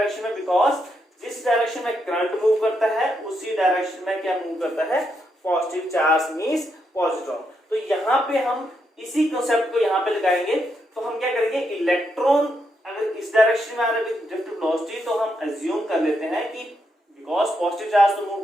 में, बिकॉज जिस डायरेक्शन में करंट मूव करता है उसी डायरेक्शन में क्या मूव करता है पॉजिटिव चार्ज मींस पॉजिट्रॉन। तो यहाँ पे हम इसी कंसेप्ट को यहाँ पे लगाएंगे। तो हम क्या करेंगे, इलेक्ट्रॉन अगर इस डायरेक्शन में आ रहा है विद ड्रिफ्ट वेलोसिटी तो हम अज्यूम कर लेते हैं कि बिकॉज पॉजिटिव चार्ज तो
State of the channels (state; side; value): normal; both; correlation 0.80